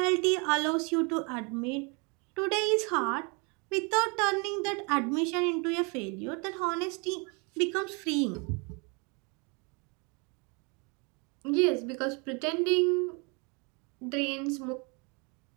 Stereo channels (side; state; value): left; quieter; 32.2 dB